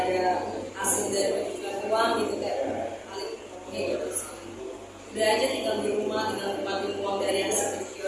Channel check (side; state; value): both; identical; correlation 1.00